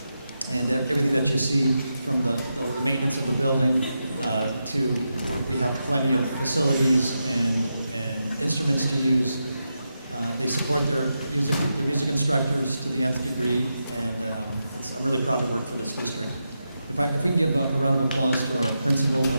and everything that you see from the maintenance of the building to we have plenty of facilities and instruments to use. They support their music instructors to the nth degree, and I'm really proud to work for this district. If we can give a round of applause to our principal of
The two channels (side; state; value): both; inverted; correlation -0.87